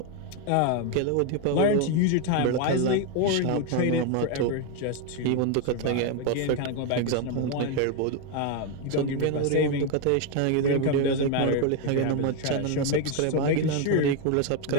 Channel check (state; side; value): different; both; correlation 0.01